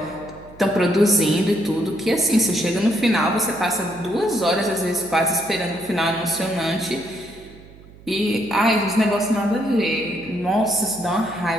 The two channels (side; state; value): right; noise; hum, 22 dB below the sound